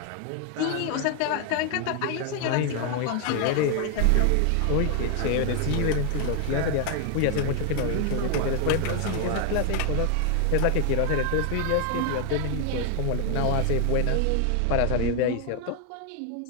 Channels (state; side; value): different; both; correlation 0.00